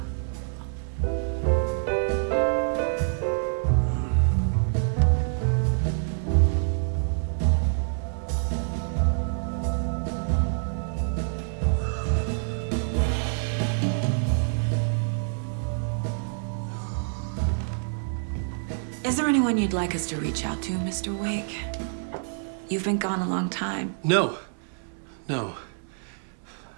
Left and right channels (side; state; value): left; silent; digital silence